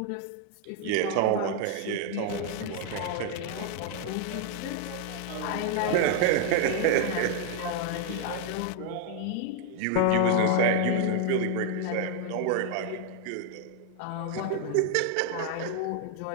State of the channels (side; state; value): both; different; correlation 0.00